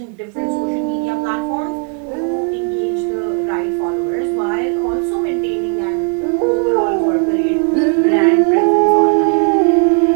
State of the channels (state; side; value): quieter; left; 38.9 dB